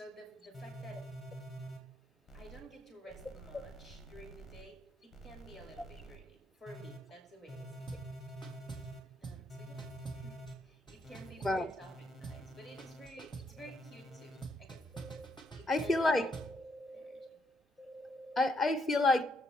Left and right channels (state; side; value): normal; both; correlation 0.75